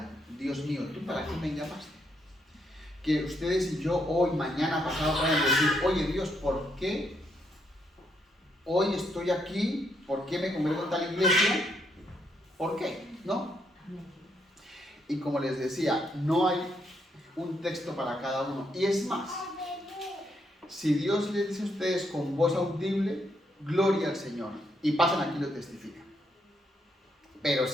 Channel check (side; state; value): both; normal; correlation 0.76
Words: Dios mío, ¿tú para qué me llamaste? Que ustedes y yo hoy, mañana, pasado puedan decir, oye Dios, ¿por qué hoy estoy aquí? ¿Por qué me congrego en tal iglesia? ¿Por qué? ¿No? Y como les decía, no hay un texto para cada uno. Y es más, si Dios les dice a ustedes con voz audible, gloria al Señor, y pasan aquí y lo testifican. Pero